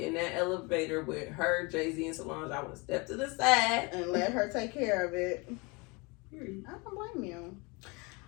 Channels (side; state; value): right; quieter; 27.9 dB